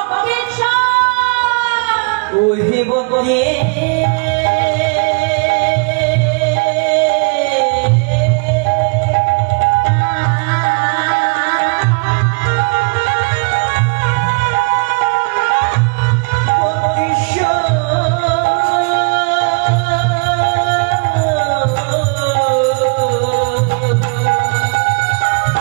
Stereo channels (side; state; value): left; quieter; 33.8 dB